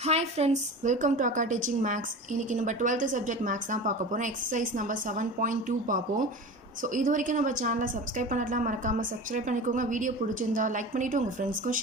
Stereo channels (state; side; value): normal; both; correlation 0.33